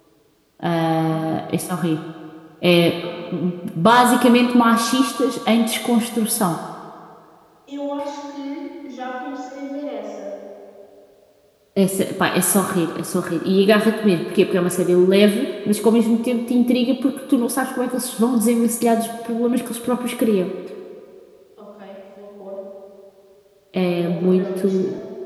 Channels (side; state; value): both; identical; correlation 1.00